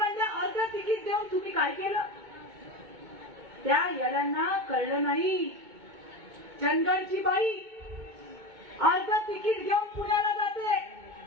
अर्ध तिकीट देऊन तुम्ही काय केलं? त्या येड्यांना कळलं नाही. चंदगडची बाई अर्ध तिकीट घेऊन पुण्याला जाते,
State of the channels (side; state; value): left; late; 2.2 ms